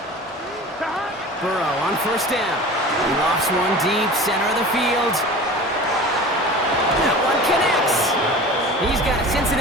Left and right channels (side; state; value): both; normal; correlation 0.37